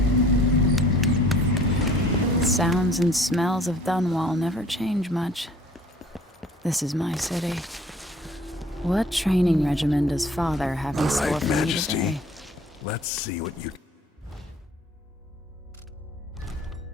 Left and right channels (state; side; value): normal; both; correlation 0.53